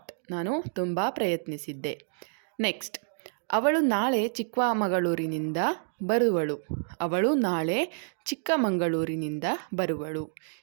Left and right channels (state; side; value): silent; left; digital silence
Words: ನಾನು ತುಂಬ ಪ್ರಯತ್ನಿಸಿದ್ದೆ. ನೆಕ್ಸ್ಟ್, ಅವಳು ನಾಳೆ ಚಿಕ್ಕಮಗಳೂರಿನಿಂದ ಬರುವಳು. ಅವಳು ನಾಳೆ ಚಿಕ್ಕಮಗಳೂರಿನಿಂದ ಬರುವಳು.